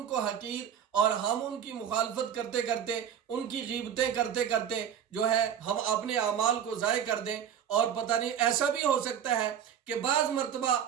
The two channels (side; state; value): left; quieter; 8.9 dB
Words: کو حقیر اور ہم ان کی مخالفت کرتے کرتے، ان کی غیبتیں کرتے کرتے جو ہے ہم اپنے اعمال کو ضائع کر دیں۔ اور پتہ نہیں ایسا بھی ہو سکتا ہے کہ بعض مرتبہ